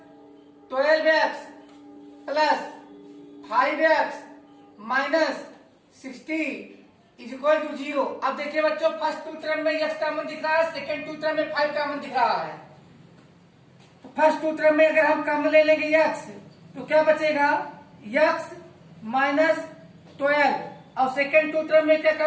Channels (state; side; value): identical; both; correlation 1.00